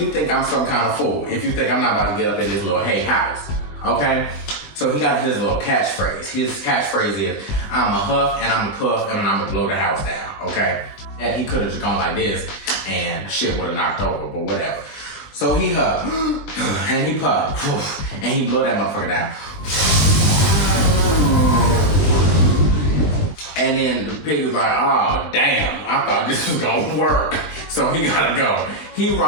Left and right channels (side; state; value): right; late; 20 ms